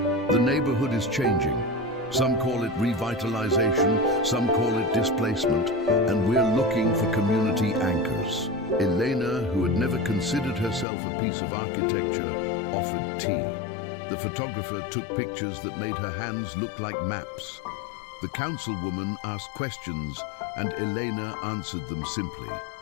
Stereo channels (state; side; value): drops out; right; at 10.9 s